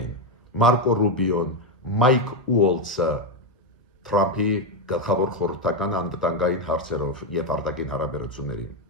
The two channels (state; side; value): normal; both; correlation 0.07